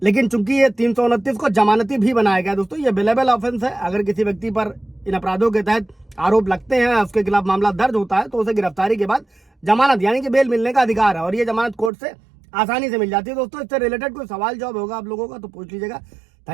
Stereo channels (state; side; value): drops out; left; at 11.9 s